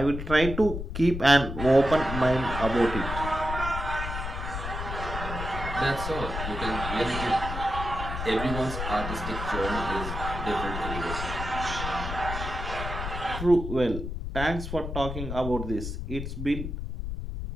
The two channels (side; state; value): left; noise; rumble, 5 dB below the sound